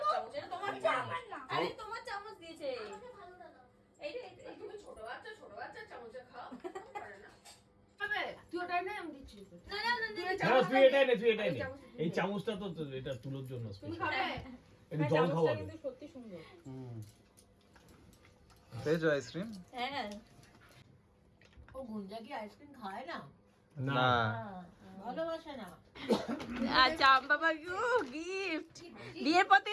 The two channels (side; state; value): both; identical; correlation 1.00